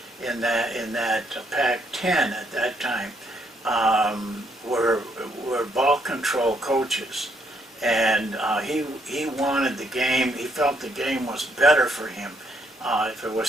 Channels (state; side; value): normal; both; correlation 0.72